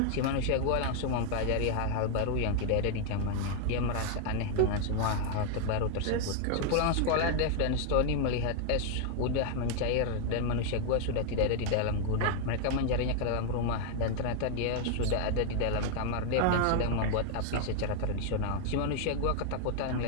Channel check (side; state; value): both; different; correlation 0.00